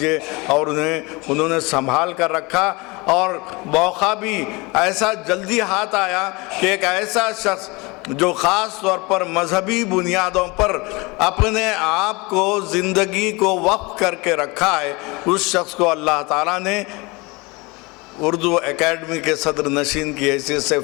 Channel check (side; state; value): right; quieter; 25.7 dB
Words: اور انہوں نے سنبھال کر رکھا۔ اور موقع بھی ایسا جلدی ہاتھ آیا کہ ایک ایسا شخص جو خاص طور پر مذہبی بنیادوں پر اپنے آپ کو، زندگی کو وقف کر کے رکھا ہے، اس شخص کو اللہ تعالیٰ نے اردو اکیڈمی کے صدر نشین کی حیثیت سے